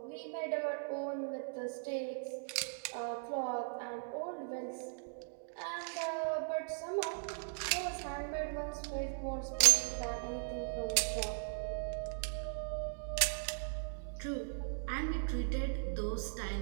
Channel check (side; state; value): left; silent; digital silence